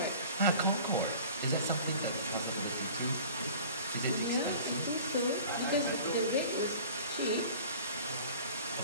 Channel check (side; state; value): both; inverted; correlation -0.44